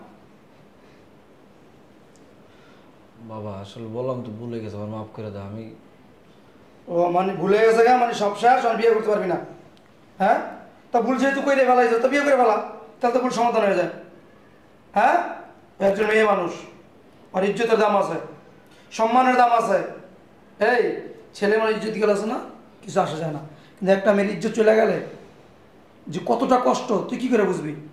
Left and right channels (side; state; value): both; identical; correlation 1.00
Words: বাবা আসলে বললাম তো, ভুলে গেছে, আমার মাফ করে দাও। আমি ও মানে ভুলে গেছে গা, মানে সব শেষ, আর বিয়ে করতে পারবি না? হ্যাঁ, তা ভুল যেহেতু করে ফেলাইছ, তো বিয়ে করে ফেলা, তাহলে তো ভুল সমাধান হয়ে যায়। হ্যাঁ, ও একজন মেয়ে মানুষ, আর ইজ্জতের দাম আছে, সম্মানের দাম আছে। এই ছেলে মানে ইজ্জত গেলে আছে না, কিছু আসা যায় না, কিন্তু একটা মেয়ের ইজ্জত চলে গেলে যে কতটা কষ্ট তুই কি করে বুঝবি?